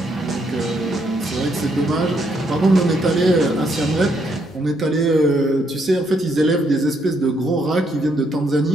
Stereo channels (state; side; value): normal; both; correlation 0.74